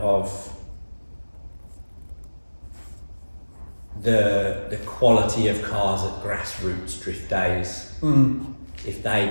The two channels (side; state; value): both; inverted; correlation -1.00